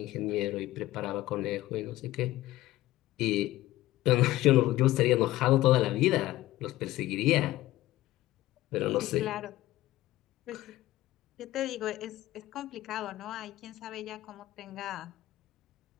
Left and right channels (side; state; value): right; quieter; 16.2 dB